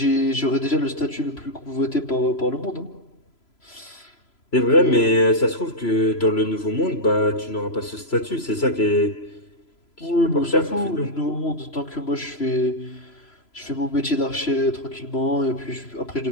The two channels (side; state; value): right; late; 3.0 ms